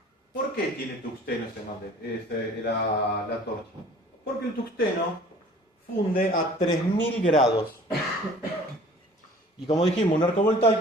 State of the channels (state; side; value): normal; both; correlation 0.49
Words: ¿Por qué tiene tungsteno la torcha? Porque el tungsteno funde a 3000 grados. Y como dijimos, un arco